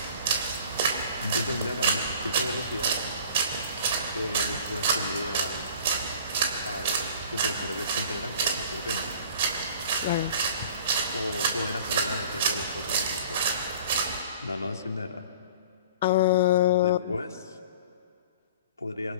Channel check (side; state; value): both; inverted; correlation -0.46